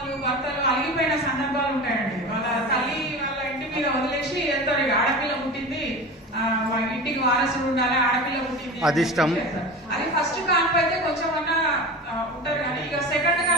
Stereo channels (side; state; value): both; normal; correlation 0.30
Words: భర్తలు అలిగిపోయిన సందర్భాలు ఉంటాయండి. వాళ్ళ తల్లి వాళ్ళ ఇంటి మీద వదిలేసి వెళ్తారు. ఆడపిల్ల పుట్టింది, వాళ్ళ ఇంటికి వారసుడు ఉండాలి, ఆడపిల్ల పుట్టింది అదిష్టం. అది ఫస్ట్ కాన్పు అయితే కొంచెం అన్నా ఉంటారు. కానీ ఇక సెకండ్